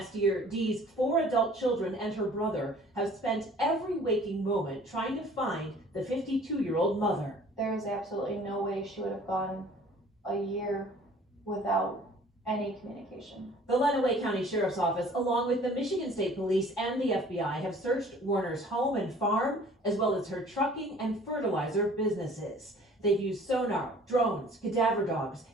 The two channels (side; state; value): both; normal; correlation 0.51